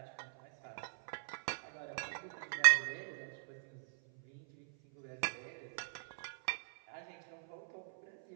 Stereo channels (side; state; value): left; silent; 51 dB below the other